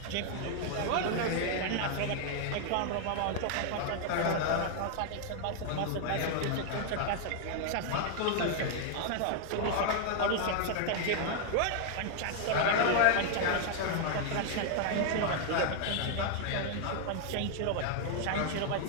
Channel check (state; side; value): different; both; correlation 0.00